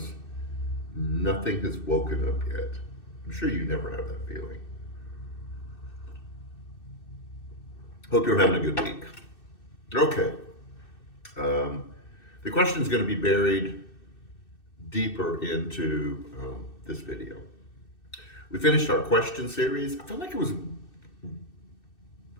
nothing has woken up yet. I'm sure you never have that feeling. Hope you're having a good week. Okay. Um, the question is going to be buried deeper into this video. We finished our question series. I felt like it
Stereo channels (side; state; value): right; late; 2.6 ms